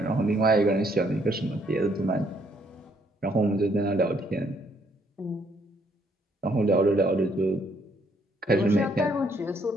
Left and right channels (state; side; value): normal; both; correlation 0.69